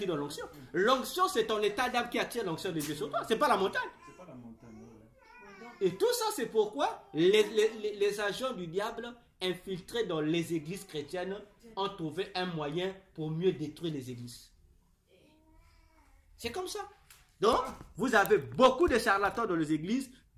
donne l'onction. L'onction, c'est ton état d'âme qui attire l'onction de Dieu sur toi. C'est pas la montagne. C'est pas la montagne. Et tout ça, c'est pourquoi les agents du diable infiltrés dans les églises chrétiennes ont trouvé un moyen pour mieux détruire les églises. C'est comme ça. Donc, vous avez beaucoup de charlatans dans les églises,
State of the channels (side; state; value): both; identical; correlation 1.00